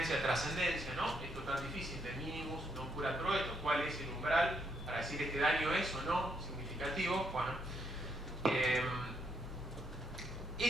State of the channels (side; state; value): both; normal; correlation 0.75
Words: trascendencia, ¿no? Esto tan difícil de minimus non curat pro esto, ¿cuál es el umbral para decir este daño es o no significativo? Bueno,